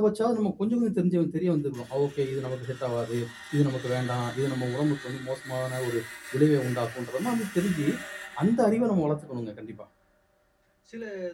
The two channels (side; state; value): both; identical; correlation 1.00